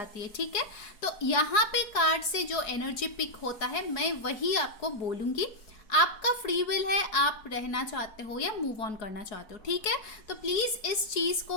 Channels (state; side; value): late; right; 4.4 ms